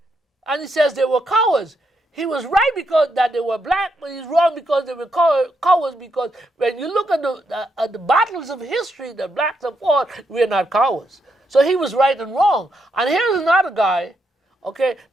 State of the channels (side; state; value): both; normal; correlation 0.80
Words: and he says they were cowards. He was right because that they were black, but he's wrong because they were cowards, because when you look at the battles of history that blacks have fought, we're not cowards. So he was right and wrong. And here's another guy, okay?